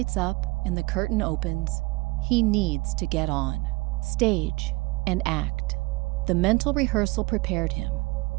up and the curtain opens, he needs to get on stage and act. The mental rehearsal prepared him,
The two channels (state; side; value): quieter; left; 24.2 dB